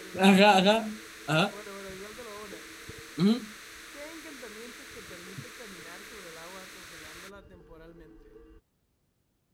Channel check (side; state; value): both; identical; correlation 1.00